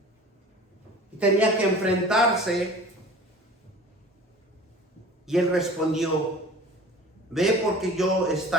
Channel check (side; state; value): both; normal; correlation 0.41